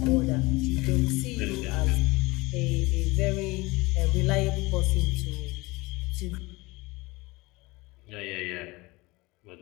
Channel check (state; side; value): quieter; right; 22.7 dB